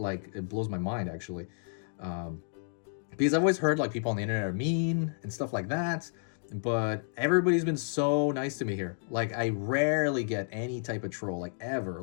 blows my mind actually. Because I've always heard like people on the internet are mean and stuff like that. But everybody's been so nice to me here. Like I rarely get any type of troll, like ever,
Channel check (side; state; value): right; silent; digital silence